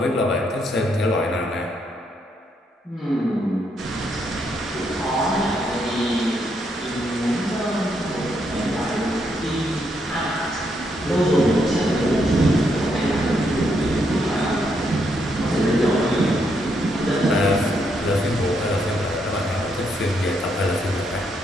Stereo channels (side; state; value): both; normal; correlation 0.77